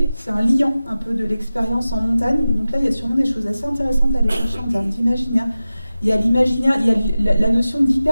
c'est un liant un peu de l'expérience en montagne. Et donc là, il y a sûrement des choses assez intéressantes à aller chercher en termes d'imaginaire. Il y a l'imaginaire, il y a la notion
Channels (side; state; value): both; inverted; correlation -0.96